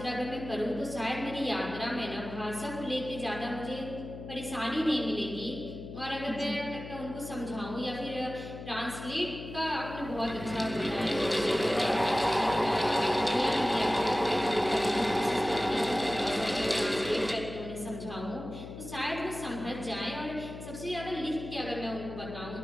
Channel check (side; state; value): left; noise; hum, 11 dB below the sound